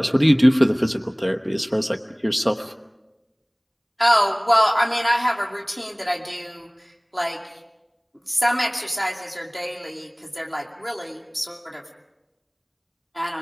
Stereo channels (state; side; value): identical; both; correlation 1.00